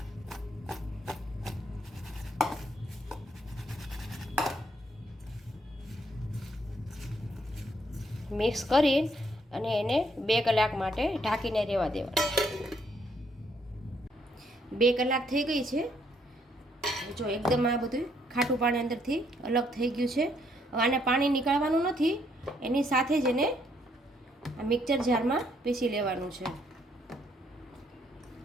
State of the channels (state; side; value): normal; both; correlation 0.71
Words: મિક્સ કરી અને એને 2 કલાક માટે ઢાંકીને રહેવા દેવાનું. 2 કલાક થઈ ગઈ છે. જો એકદમ આ બધું ખાટું પાણી અંદરથી અલગ થઈ ગયું છે. હવે આને પાણી નીકાળવાનું નથી, એની સાથે જ એને આ મિક્સર જારમાં પીસી લેવાનું છે.